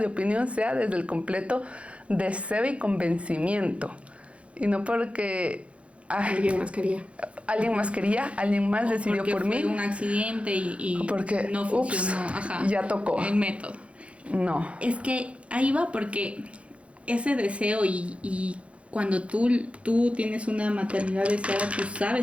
opinión sea desde el completo deseo y convencimiento. Y no porque... Alguien más quería. Alguien más quería, alguien más decidió porque por fue mí. un accidente y Porque, no funcionó. Ajá, ya tocó. el método. No. Es que ahí va porque ese deseo y cuando tú tienes una maternidad deseada, tú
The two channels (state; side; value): late; left; 0.062 ms